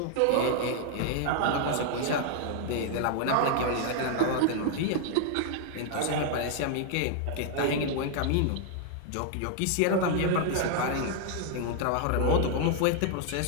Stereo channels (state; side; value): different; both; correlation 0.00